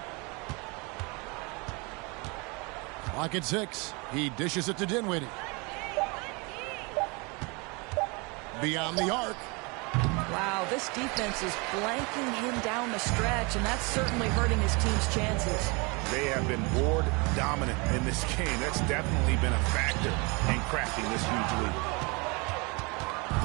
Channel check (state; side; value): quieter; left; 29.0 dB